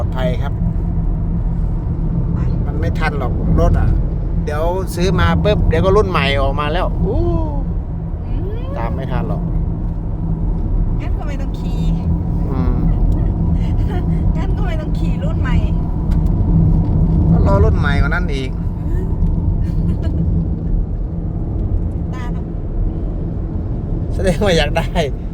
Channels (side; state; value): both; identical; correlation 1.00